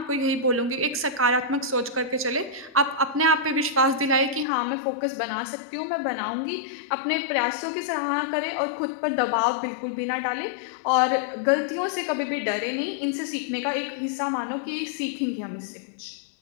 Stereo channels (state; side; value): drops out; right; at 4.5 s